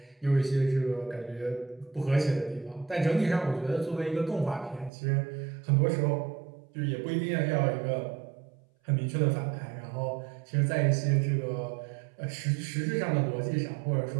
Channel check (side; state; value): left; drops out; at 4.9 s